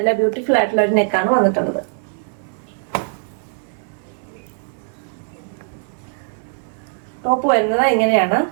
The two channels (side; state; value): left; silent; 65 dB below the other